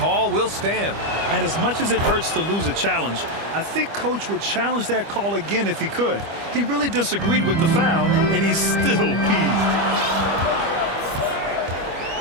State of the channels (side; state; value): left; late; 25 ms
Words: will stand. And as much as it hurts to lose a challenge, I think Coach would challenge that call again if he could. He really disagreed with the foul, and he's still peeved.